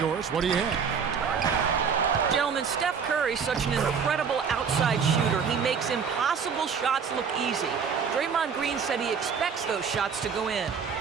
what do you have? Gentlemen, Steph Curry's such an incredible outside shooter. He makes impossible shots look easy. Draymond Green said he expects those shots to go in.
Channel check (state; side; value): quieter; left; 6.4 dB